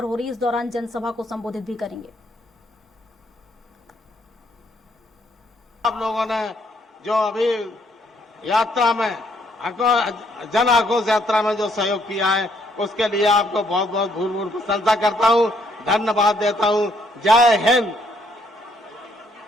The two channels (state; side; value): normal; both; correlation 0.69